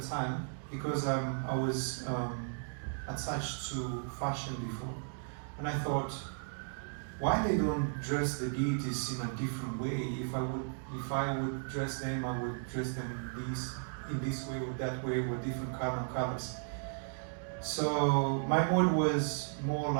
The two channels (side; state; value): left; silent; digital silence